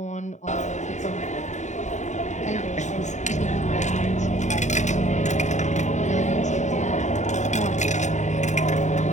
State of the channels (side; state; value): right; late; 0.34 ms